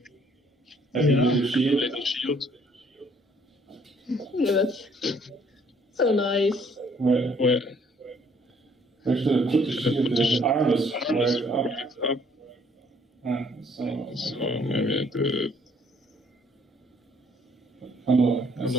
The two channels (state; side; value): normal; both; correlation 0.62